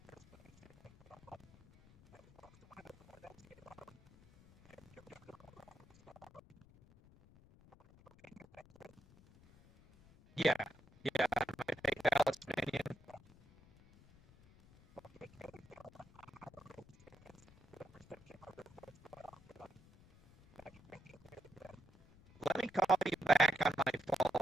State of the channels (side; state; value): left; noise; rumble, 24 dB below the sound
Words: yeah, yeah. My fake Palestinian. Let me call you back on my